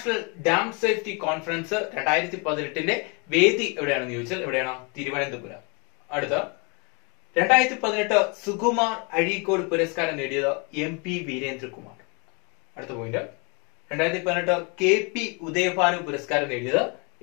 ഡാം സേഫ്റ്റി കോൺഫറൻസ് 2018 വേദി എവിടെയാണെന്ന് ചോദിച്ചാൽ എവിടെയാണ്? തിരുവനന്തപുരം. അടുത്ത 2018 സുകുമാർ അഴീക്കോട് പുരസ്കാരം നേടിയത് MP വീരേന്ദ്രകുമാർ. അടുത്ത പോയിന്റ് 2018 KP ഉദയഭാനു പുരസ്കാരം നേടിയത്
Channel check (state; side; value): quieter; right; 32.6 dB